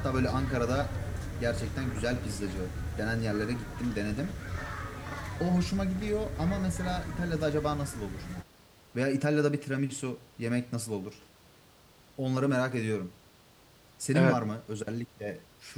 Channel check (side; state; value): both; identical; correlation 1.00